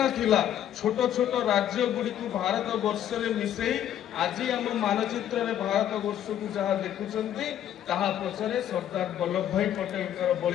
थिला छोट छोट राज्य गुड़ी को भारत वर्ष में मिसई आज आम मानचित्र में भारत वर्ष को जहाँ देखुंट ताहा पछरे सरदार वल्लभ भाई पटेल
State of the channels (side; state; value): right; quieter; 10.8 dB